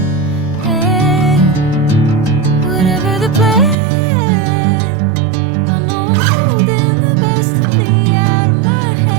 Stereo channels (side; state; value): left; drops out; at 3.8 s